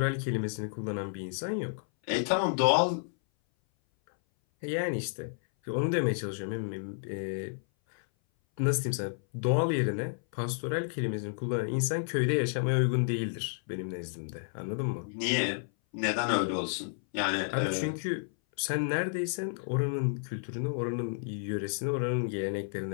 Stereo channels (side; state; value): right; silent; 57 dB below the other